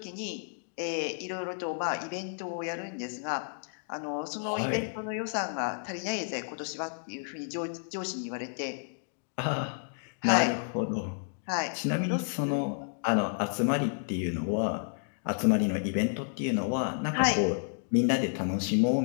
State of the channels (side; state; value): right; silent; digital silence